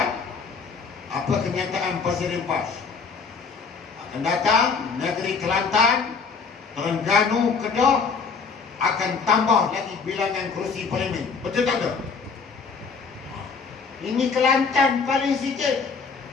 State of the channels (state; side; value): quieter; right; 5.2 dB